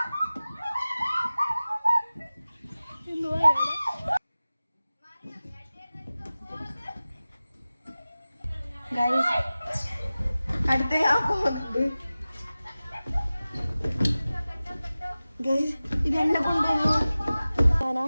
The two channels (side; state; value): both; inverted; correlation -0.97